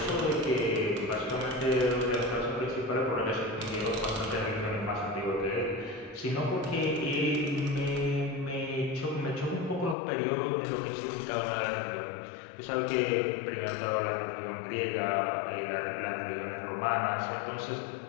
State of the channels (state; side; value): drops out; right; at 10.0 s